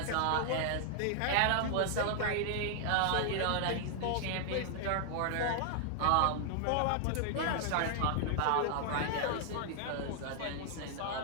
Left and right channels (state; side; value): different; both; correlation 0.00